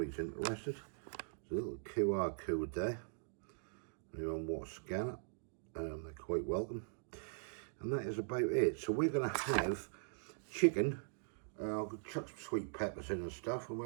interested. There's a little QR code there. Anyone want to scan it, they're quite welcome. And that is about it. So we're going to have chicken. I'll chuck some sweet peppers in and stuff, and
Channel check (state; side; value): silent; left; digital silence